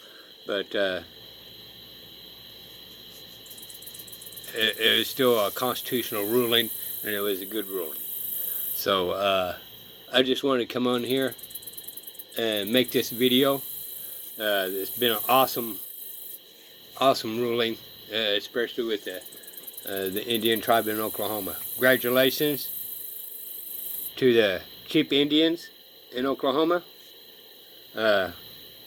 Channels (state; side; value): identical; both; correlation 1.00